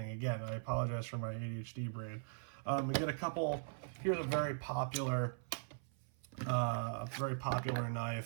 Again, I apologize for my ADHD brain. We get a couple. Here's a very popular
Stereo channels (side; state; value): left; silent; 51 dB below the other